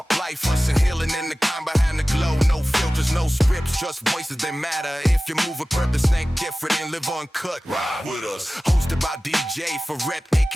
life, hustle, healing in the kind behind the glow. No filters, no scripts, just voices that matter. If you move a purpose, ain't different and live uncut, ride with us. Hosted by DJ Verrett,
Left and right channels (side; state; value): both; normal; correlation 0.97